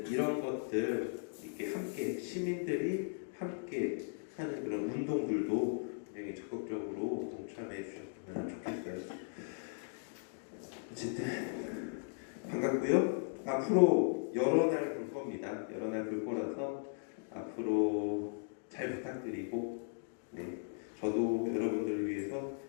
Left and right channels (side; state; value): right; silent; digital silence